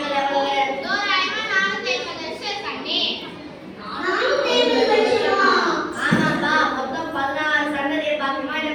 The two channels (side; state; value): both; identical; correlation 1.00